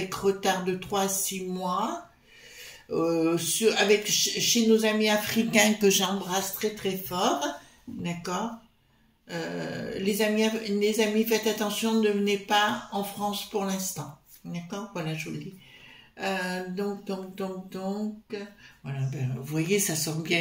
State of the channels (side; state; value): both; identical; correlation 1.00